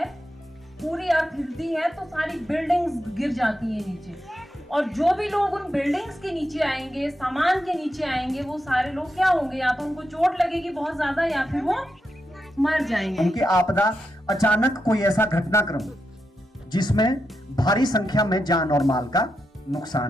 पूरी अर्थ हिलती है, तो सारी बिल्डिंग्स गिर जाती है नीचे, और जो भी लोग उन बिल्डिंग्स के नीचे आएंगे, सामान के नीचे आएंगे, वो सारे लोग क्या होंगे? या तो उनको चोट लगेगी बहुत ज्यादा, या फिर वो मर जाएंगे। उनकी आपदा अचानक कोई ऐसा घटनाक्रम जिसमें भारी संख्या में जान और माल का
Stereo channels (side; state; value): both; normal; correlation 0.85